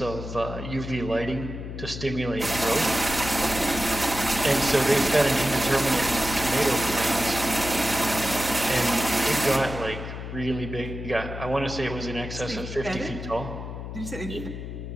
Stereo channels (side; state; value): left; noise; hum, 8 dB below the sound